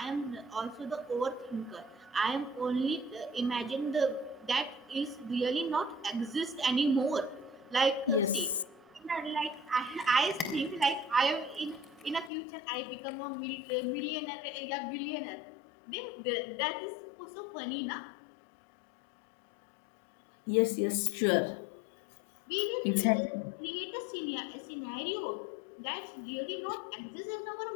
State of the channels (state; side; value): drops out; right; at 12.3 s